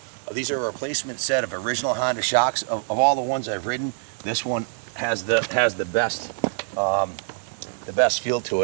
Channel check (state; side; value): silent; left; digital silence